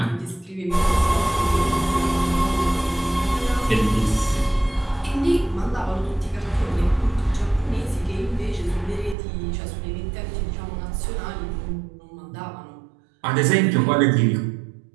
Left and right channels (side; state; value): left; drops out; at 9.2 s